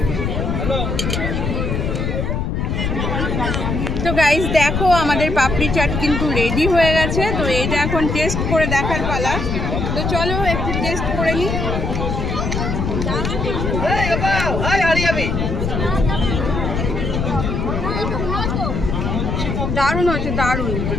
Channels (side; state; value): left; noise; rumble, 1 dB below the sound